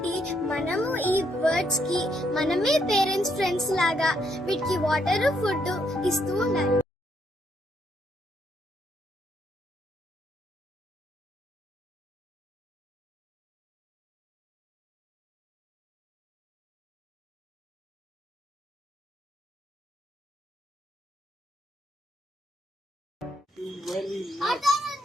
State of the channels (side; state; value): both; normal; correlation 0.74